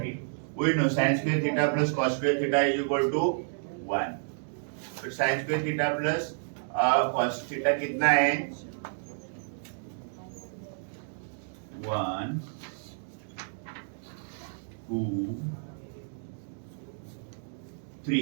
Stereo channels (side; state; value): left; silent; digital silence